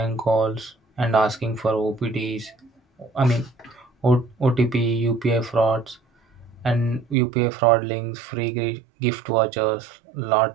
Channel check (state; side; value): drops out; left; at 7.2 s